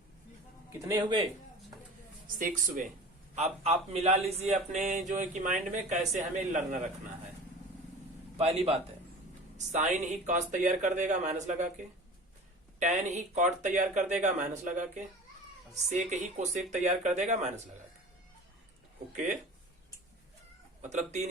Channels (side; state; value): both; normal; correlation 0.39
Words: कितने हुए? 6 हुए। अब आप मिला लीजिए अपने जो है कि माइंड में कैसे हमें लर्न रखना है। पहली बात है, साइन ही कॉस तैयार कर देगा माइनस लगा के, टेन ही कॉट तैयार कर देगा माइनस लगा के, सेक ही कोसेक तैयार कर देगा माइनस लगा के। ओके, मतलब 3